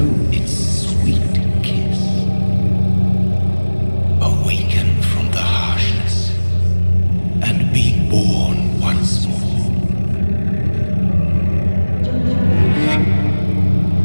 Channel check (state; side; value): inverted; both; correlation -1.00